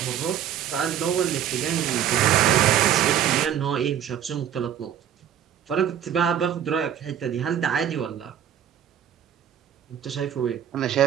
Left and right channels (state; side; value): quieter; left; 10.0 dB